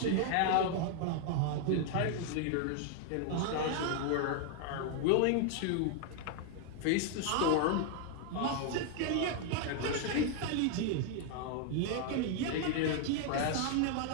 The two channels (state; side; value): different; both; correlation 0.00